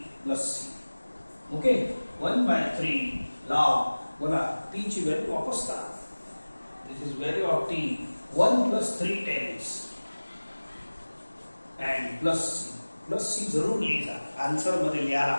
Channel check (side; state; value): both; inverted; correlation -1.00